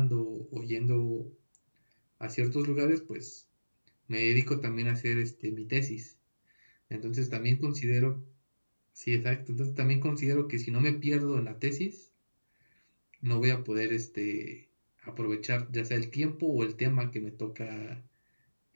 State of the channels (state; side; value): inverted; both; correlation -1.00